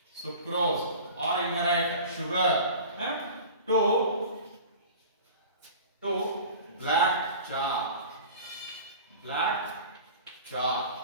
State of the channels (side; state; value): both; inverted; correlation -0.39